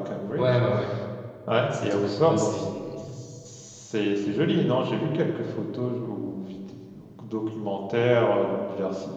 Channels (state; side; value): identical; both; correlation 1.00